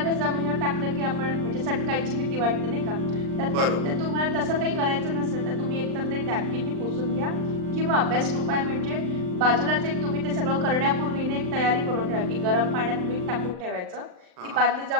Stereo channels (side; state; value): left; late; 39 ms